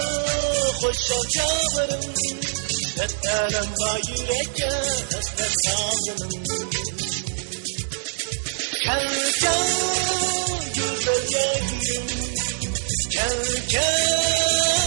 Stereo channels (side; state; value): left; silent; digital silence